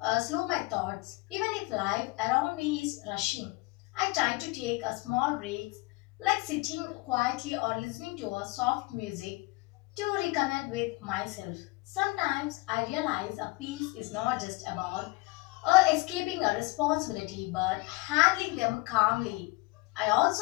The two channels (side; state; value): right; quieter; 23.3 dB